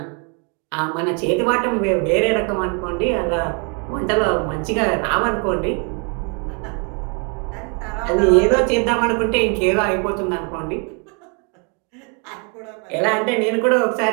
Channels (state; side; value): quieter; left; 36.2 dB